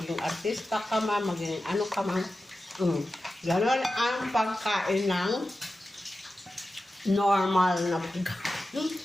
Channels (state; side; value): normal; both; correlation 0.93